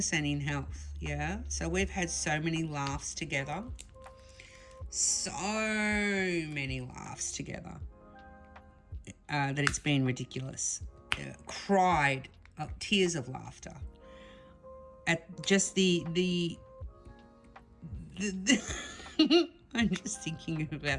and in health, yeah? So we've had so many laughs together. So many laughs together that it's been ridiculous. Cried, tears of laughter at just the I'm just thinking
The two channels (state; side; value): identical; both; correlation 1.00